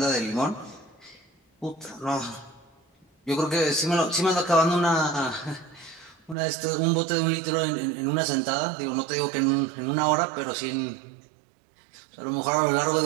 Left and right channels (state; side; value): drops out; left; at 6.4 s